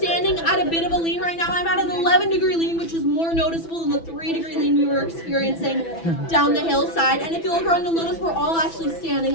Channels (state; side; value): late; right; 6.0 ms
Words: at a bit of a lean right now. I'm at an 11-degree lean, which is more noticeable than the 3-degree lean we were experiencing down the hillside. And if you look around, you'll notice we're all actually standing